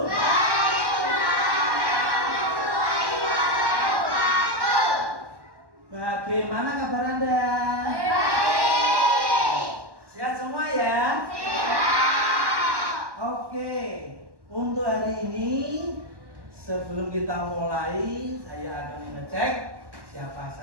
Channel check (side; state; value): left; late; 1.1 ms